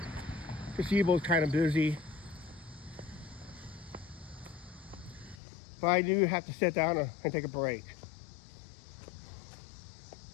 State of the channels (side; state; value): right; drops out; at 5.4 s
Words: Gazebo's kind of busy. But I do have to sit down and take a break.